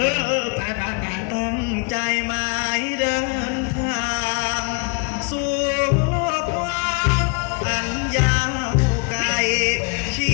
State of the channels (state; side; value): quieter; right; 33.1 dB